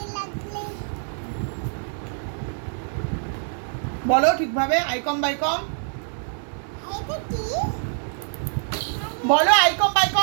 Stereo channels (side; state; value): left; silent; 62 dB below the other